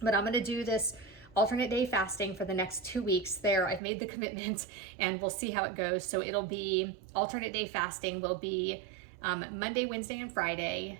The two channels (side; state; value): left; drops out; at 3.8 s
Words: But I'm going to do this alternate day fasting for the next 2 weeks. There, I've made the commitment, and we'll see how it goes. So it'll be alternate day fasting will be Monday, Wednesday, and Friday